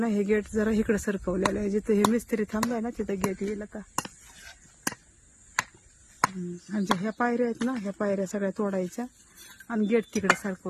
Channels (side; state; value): both; identical; correlation 1.00